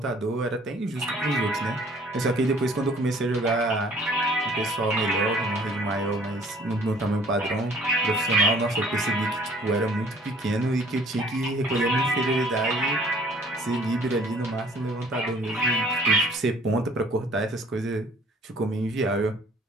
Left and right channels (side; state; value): both; normal; correlation 0.55